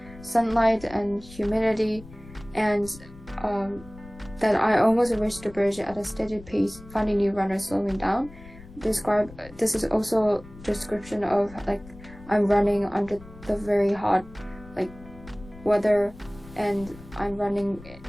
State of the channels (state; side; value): noise; left; rumble, 19 dB below the sound